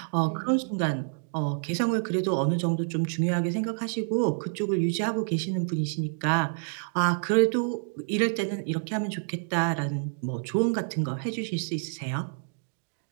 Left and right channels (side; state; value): left; silent; digital silence